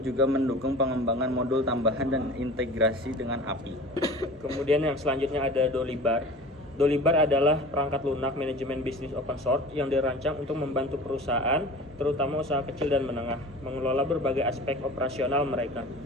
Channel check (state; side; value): normal; both; correlation 0.39